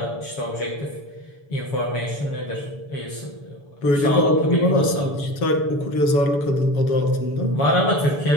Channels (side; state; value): right; late; 7.0 ms